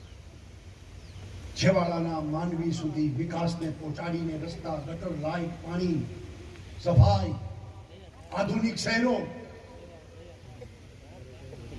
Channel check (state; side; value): identical; both; correlation 1.00